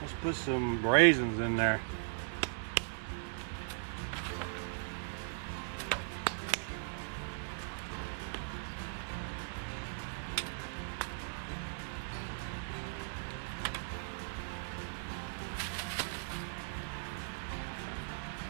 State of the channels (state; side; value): silent; left; 52 dB below the other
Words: put some raisins in there.